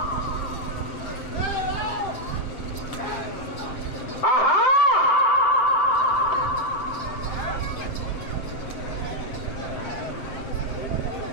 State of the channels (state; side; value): late; right; 7.6 ms